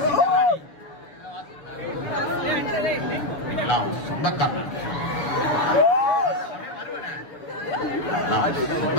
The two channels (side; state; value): right; late; 6.8 ms